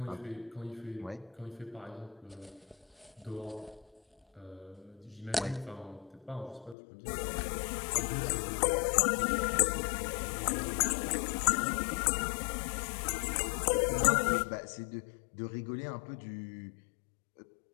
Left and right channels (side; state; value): right; drops out; at 6.8 s